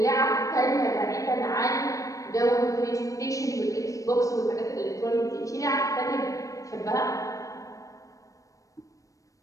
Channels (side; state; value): right; late; 0.16 ms